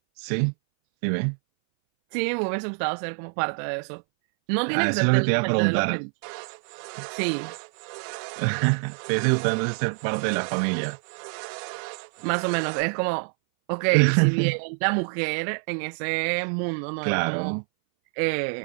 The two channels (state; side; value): silent; left; 59 dB below the other